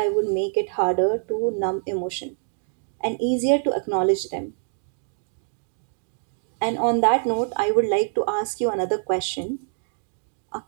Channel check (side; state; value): left; silent; digital silence